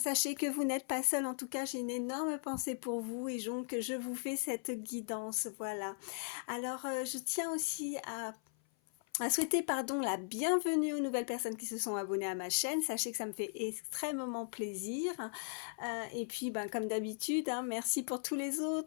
que vous n'êtes pas seul. En tout cas, j'ai une énorme pensée pour vous et donc je vous fais cette guidance. Voilà. Alors, je tiens aussi à souhaiter la bienvenue aux nouvelles personnes qui se sont abonnées à ma chaîne. Sachez que ça me fait extrêmement plaisir. Et puis, comme d'habitude, hein, merci pour tous les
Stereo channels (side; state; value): right; silent; 52 dB below the other